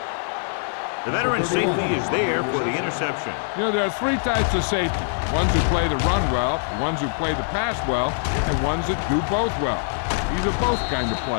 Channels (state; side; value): silent; right; 62 dB below the other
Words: The veteran safety is there for the interception. You know, there are three types of safety. Ones who play the run well, ones who play the pass well, and ones that do both well. He's a both kind of